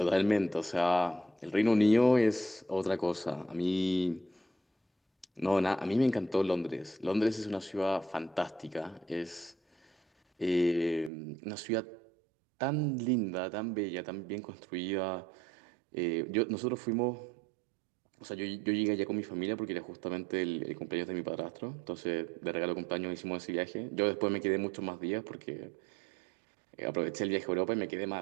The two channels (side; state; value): left; drops out; at 11.1 s